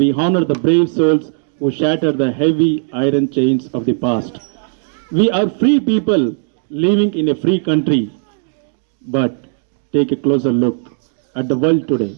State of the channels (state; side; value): silent; left; digital silence